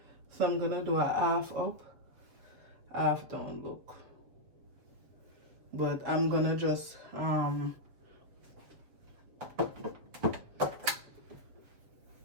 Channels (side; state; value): left; late; 7.4 ms